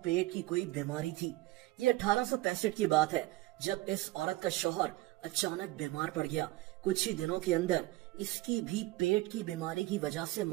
पेट की कोई बीमारी थी। ये 1865 की बात है जब इस औरत का शौहर अचानक बीमार पड़ गया। कुछ ही दिनों के अंदर इसकी भी पेट की बीमारी की वजह से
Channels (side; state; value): left; quieter; 18.6 dB